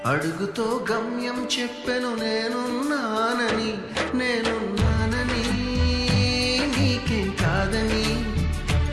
అడుగుతో గమ్యం చెప్పెను, నేనున్నానని నీకేం కాదని,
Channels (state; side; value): identical; both; correlation 1.00